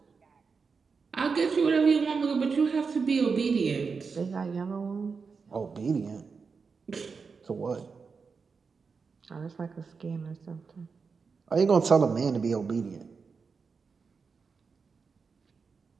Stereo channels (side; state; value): left; quieter; 5.2 dB